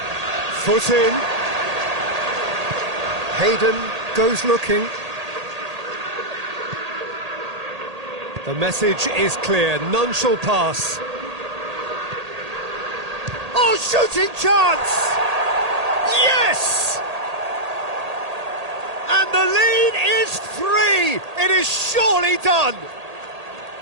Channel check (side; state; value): left; late; 1.8 ms